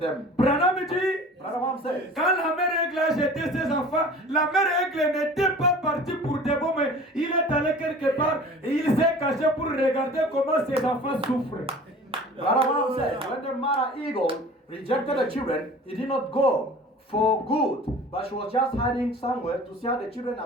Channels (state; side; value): normal; both; correlation 0.43